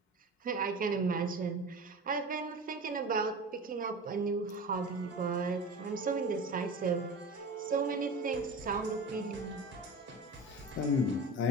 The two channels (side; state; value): both; normal; correlation 0.32